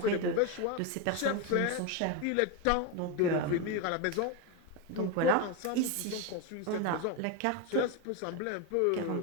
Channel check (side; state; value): both; different; correlation 0.03